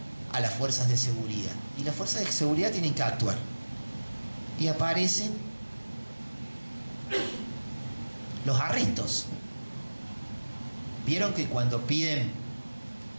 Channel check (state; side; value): inverted; both; correlation -1.00